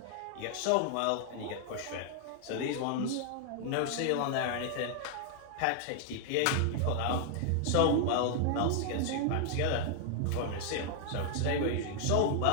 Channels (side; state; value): both; different; correlation 0.00